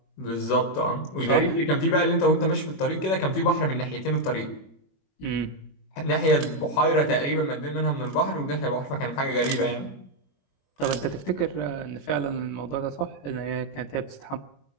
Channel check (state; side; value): late; right; 21 ms